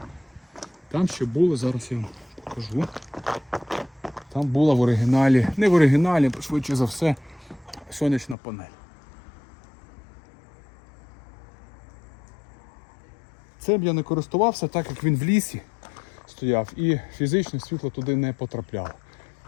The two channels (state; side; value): drops out; right; at 8.3 s